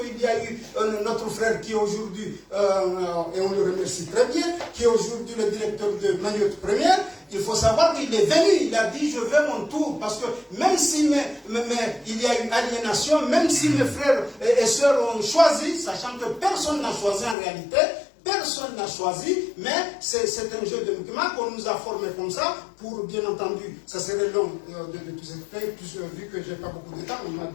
qu'il y a eu notre frère qui est aujourd'hui, et on le remercie très bien, qui est aujourd'hui le directeur de Mayotte Première. Il faut savoir qu'il est venu, il a dit je veux mon tour, parce que même si il y a eu aliénation, même si mes frères et sœurs ont choisi, sachant que personne n'a choisi en réalité, personne n'a choisi, mais c'est un jeu de mouvement qu'on nous a formé comme ça, pour bien entendu, ça serait long de tout expliquer, vu que je n'ai pas beaucoup de temps, on a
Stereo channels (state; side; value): drops out; right; at 17.4 s